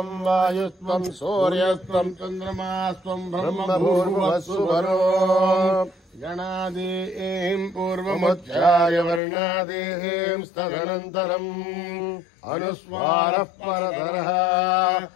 వాయుస్త్వం సూర్యస్త్వం చంద్రమాస్త్వం బ్రహ్మభూర్భువస్సువరో. గణాదీం పూర్వముచ్చాయ వర్ణాదీం స్తదనంతరం అనుస్వారః పరతరః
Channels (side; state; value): right; drops out; at 9.2 s